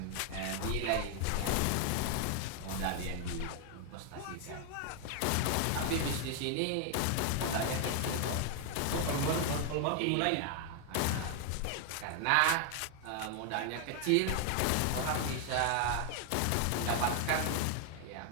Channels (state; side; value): different; both; correlation 0.00